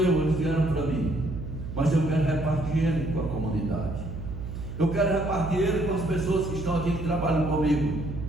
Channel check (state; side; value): noise; right; hum, 8 dB below the sound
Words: eles vieram para mim. Mas eu quero repartir ele com a comunidade. Eu quero repartir ele com as pessoas que estão aqui, que trabalham comigo.